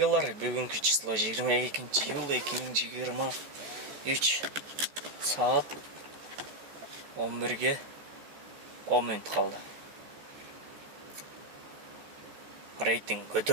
Бүгүнкү число 22-июл 2023 саат 11-ге 10 минут калды. Рейтинг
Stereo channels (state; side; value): late; left; 14 ms